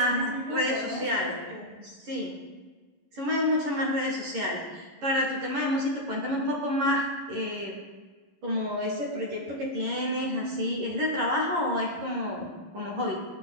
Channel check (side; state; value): left; late; 11 ms